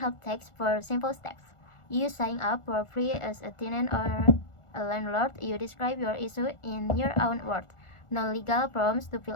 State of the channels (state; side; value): late; right; 1.4 ms